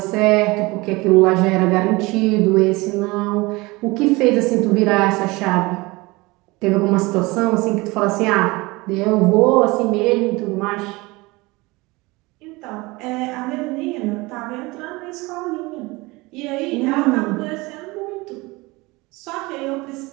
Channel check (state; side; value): quieter; left; 23.1 dB